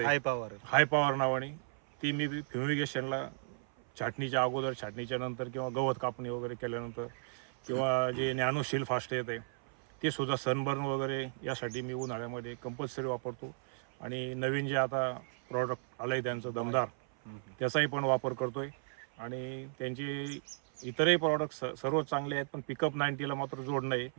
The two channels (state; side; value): silent; left; 55 dB below the other